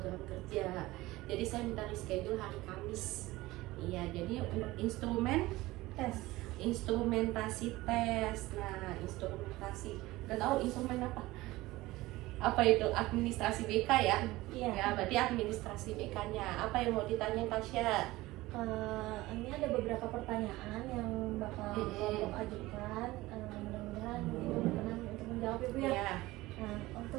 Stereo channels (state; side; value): quieter; left; 18.8 dB